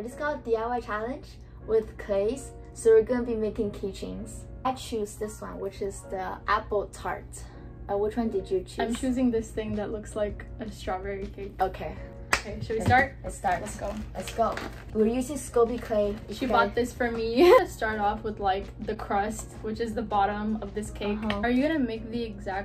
just called DIY challenge with clays. So we're gonna be making keychains. I choose this one, which is the apple tart. Which one did you choose? I'm choosing this thing that looks like a strawberry cake. Okay. Okay, should we start? Let's start. Let's go. Let's go. We're using Scoby clay. She bought this for me. Start off with like the crust, which is the bottom of this cake. Are you gonna make the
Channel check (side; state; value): both; identical; correlation 1.00